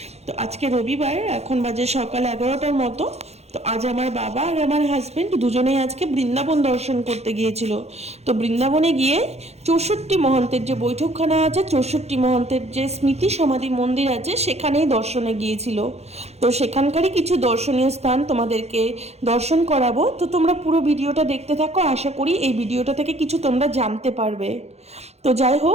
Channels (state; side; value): late; left; 0.31 ms